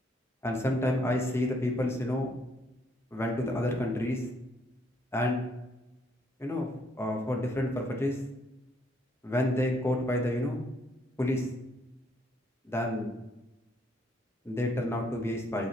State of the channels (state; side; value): normal; both; correlation 0.69